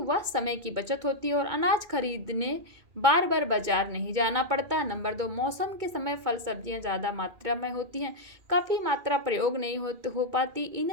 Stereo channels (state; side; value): late; left; 2.2 ms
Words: समय की बचत होती है और अनाज खरीदने बार बार बाजार नहीं जाना पड़ता। नंबर 2, मौसम के समय फल सब्जियां ज़्यादा मात्रा में होती हैं, काफ़ी मात्रा प्रयोग नहीं हो पाती।